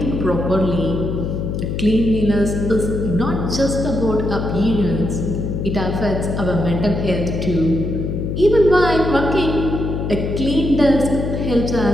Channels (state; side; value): noise; left; hum, 2 dB below the sound